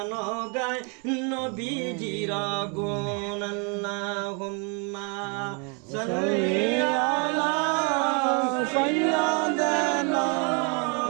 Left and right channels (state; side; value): quieter; left; 35.5 dB